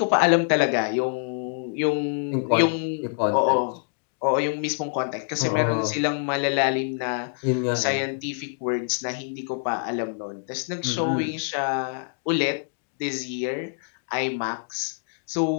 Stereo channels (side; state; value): right; silent; digital silence